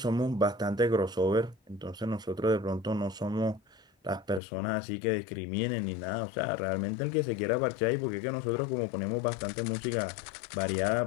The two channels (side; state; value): right; drops out; at 4.4 s